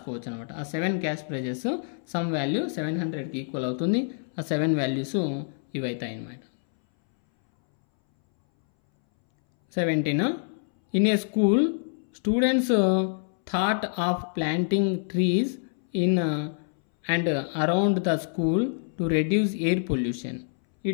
అనమాట. ఆ 7 క్యాష్ ప్రైజెస్ సమ్ వాల్యూ 700కి ఈక్వల్ అవుతుంది. ఆ 7 వాల్యూస్ ఇవైతాయి అన్నమాట. 17. In a school, students thought of planting trees in and around the school to reduce air pollution.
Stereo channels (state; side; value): silent; right; 61 dB below the other